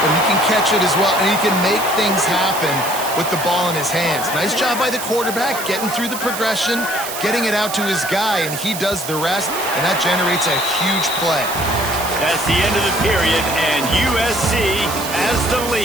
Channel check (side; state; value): right; noise; hiss, 8 dB below the sound